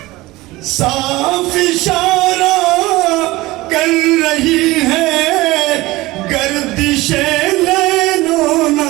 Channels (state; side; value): quieter; left; 19.6 dB